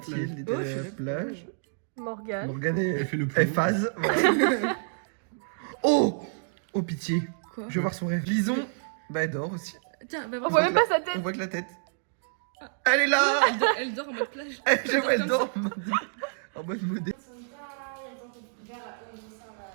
Mathilde était à la plage. Morgane. Morgane Elle fait le elle plomb. phase. Voilà. Oh pitié. Quoi? Je veux voir son rêve. Lison, bah elle dort aussi. Tiens, bah On voit même pas sa On tête. voit que la tête. Elle est là. elle dort en mode plage. J'avoue, elle dort en mode modé.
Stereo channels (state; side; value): silent; left; digital silence